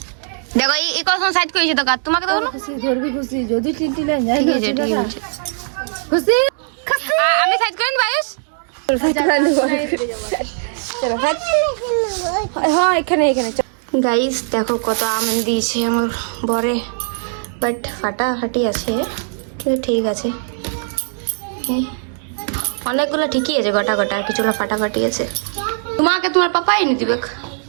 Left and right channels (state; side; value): silent; left; digital silence